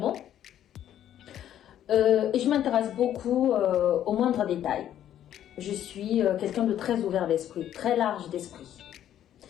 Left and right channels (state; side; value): quieter; right; 11.1 dB